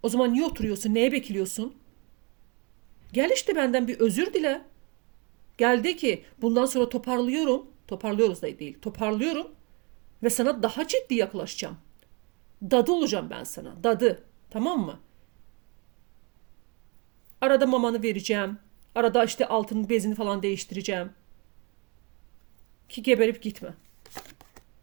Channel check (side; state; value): left; quieter; 30.7 dB